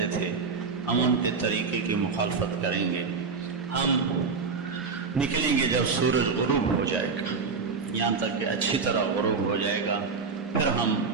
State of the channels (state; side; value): quieter; left; 4.9 dB